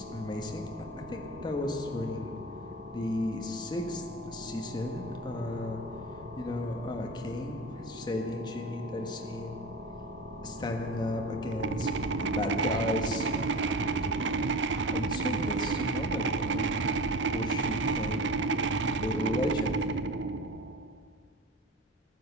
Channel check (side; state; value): both; normal; correlation 0.33